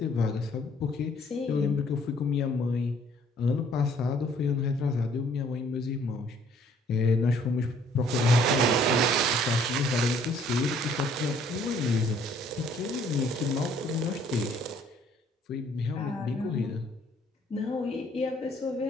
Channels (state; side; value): normal; both; correlation 0.61